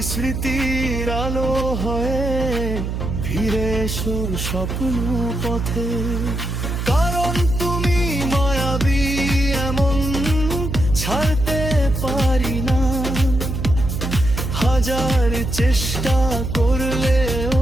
স্মৃতির আলো হয়ে ফিরে এসো স্বপ্ন পথে। কারণ তুমি মায়াবী এমন ছাড়তে পারি না, হাজার চেষ্টা করলেও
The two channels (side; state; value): right; noise; hum, 3 dB below the sound